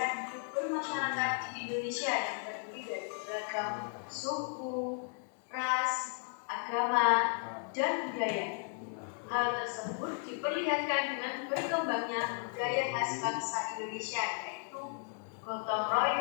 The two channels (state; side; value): silent; right; 54 dB below the other